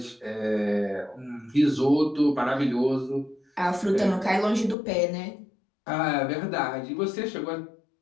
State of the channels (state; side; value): drops out; right; at 4.8 s